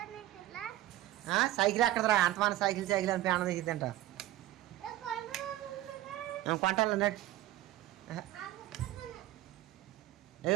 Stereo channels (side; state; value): left; quieter; 15.1 dB